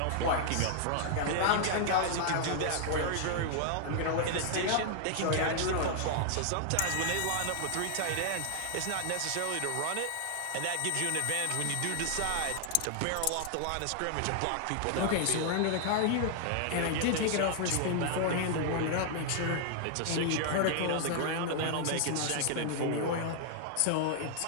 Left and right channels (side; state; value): both; different; correlation 0.00